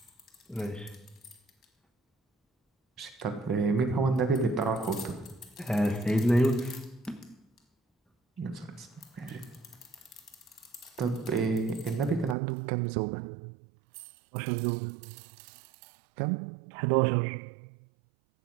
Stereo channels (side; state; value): left; drops out; at 12.4 s